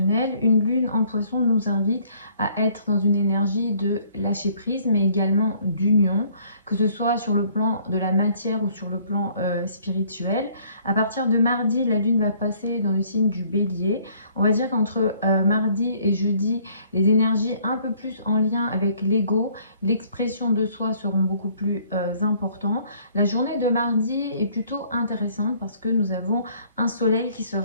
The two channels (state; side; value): inverted; both; correlation -0.61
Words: Une lune en poisson nous invite à être dans une énergie de lâcher prise, mais également d'union, que ce soit sur le plan de la matière ou sur le plan spirituel. À partir de mardi, la lune va passer dans le signe du bélier. On va dire qu'entre mardi et jeudi, les énergies un peu plus en lien avec l'ego, l'expression de soi seront beaucoup plus importantes. La journée de mardi est plutôt intéressante parce que nous avons un soleil qui